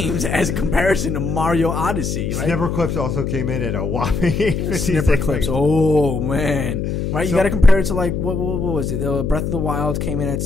as a comparison to Mario Odyssey, right? Snipper Clips also came in at a whopping 856. Snipper clips. Oh man, right? You So- got to compare it to like what was it? Breath of the Wild came in at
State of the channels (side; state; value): left; noise; hum, 2 dB below the sound